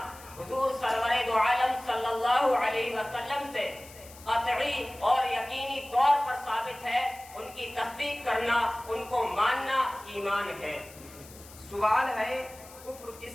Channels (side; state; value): left; noise; hiss, 20 dB below the sound